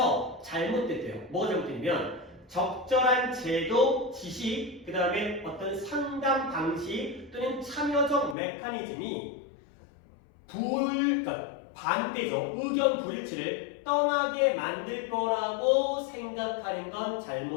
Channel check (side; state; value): right; drops out; at 8.3 s